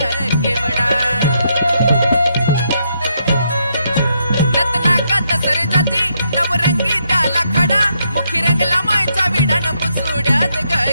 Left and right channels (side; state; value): both; inverted; correlation -0.77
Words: केवडा नतनाका तसर जाती नवरंगी त्याला खडा मुखी रंगला मायचा विडा न पुसुड्यात ग